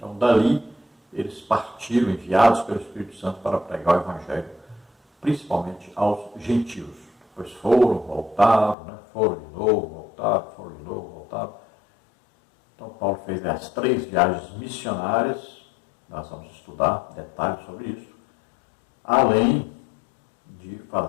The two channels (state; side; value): drops out; right; at 8.8 s